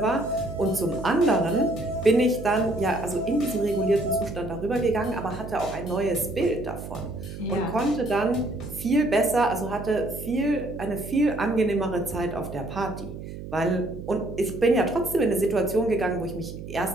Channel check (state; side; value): noise; right; hum, 11 dB below the sound